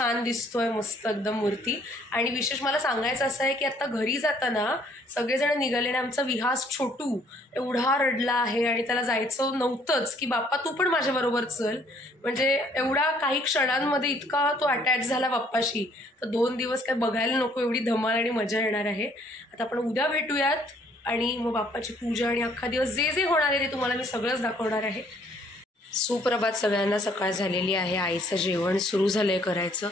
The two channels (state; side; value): normal; both; correlation 0.62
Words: दिसतोय, मस्त एकदम मूर्ती. आणि विशेष मला सांगायचं असं आहे की आता घरी जाताना सगळेजण निघाले आणि आमचा विहास छोटू एवढा रडला आहे आणि त्याला जायचं नव्हतंच की बाप्पा तू पण माझ्याबरोबर चल. म्हणजे एवढा काही क्षणांमध्ये इतका तो अटॅच झाला बाप्पाशी. तर 2 दिवस काय बघायला नको एवढी धमाल आणि मजा येणार आहे. आता आपण उद्या भेटूयात आणि मग बाप्पाची पूजा आणि अख्खा दिवस जे जे होणार आहे ते तुम्हाला मी सगळंच दाखवणार आहे. सुप्रभात सगळ्यांना. सकाळ झालेली आहे, आईचं जेवण सुरू झालंय करायचं.